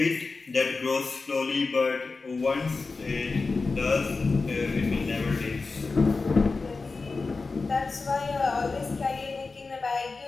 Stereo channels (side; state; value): right; quieter; 4.0 dB